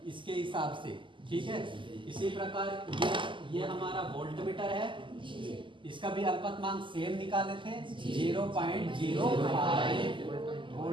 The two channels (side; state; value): left; late; 0.24 ms